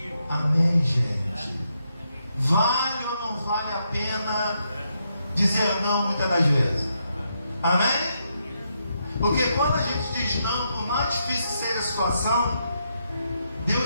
Amém, gente? Vale ou não vale a pena dizer não muitas das vezes. Amém? Porque quando a gente diz não, por mais difícil que seja a situação,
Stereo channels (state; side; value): inverted; both; correlation -0.80